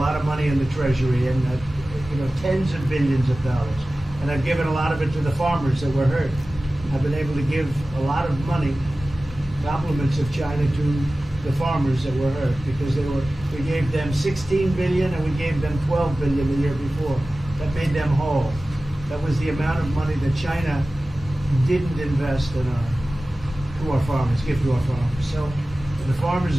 of money in the Treasury, and tens of billions of dollars. And I've given a lot of it to the farmers that were hurt. I've been able to give a lot of money, compliments of China, to the farmers that were hurt, because we gave them 16 billion and we gave them 12 billion the year before. That made them whole. That was the amount of money that China didn't invest in to our farmers, give to our farmers. So the farmers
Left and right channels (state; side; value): normal; both; correlation 0.96